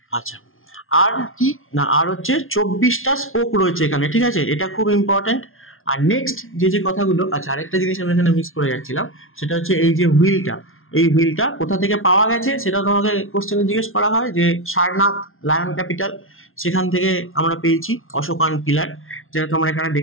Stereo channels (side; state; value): right; late; 0.60 ms